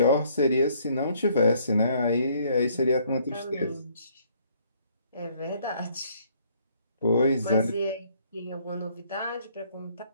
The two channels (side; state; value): both; inverted; correlation -0.64